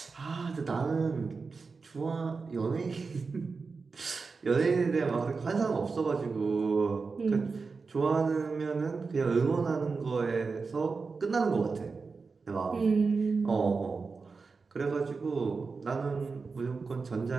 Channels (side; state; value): left; quieter; 4.6 dB